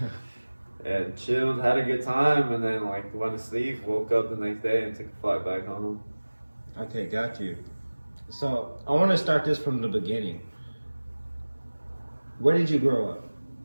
and chilled, had a good time, and then like went to sleep, woke up the next day, and took a flight back home. Okay, got you. So I want to start this from the beginning. Where did you grow up?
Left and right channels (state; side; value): inverted; both; correlation -1.00